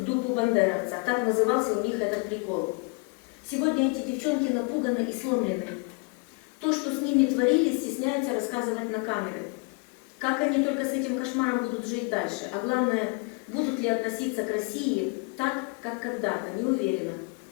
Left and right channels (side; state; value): right; quieter; 32.8 dB